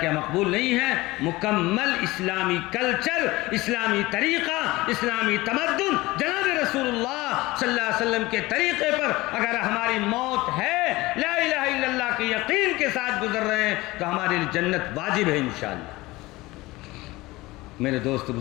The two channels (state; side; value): quieter; right; 20.2 dB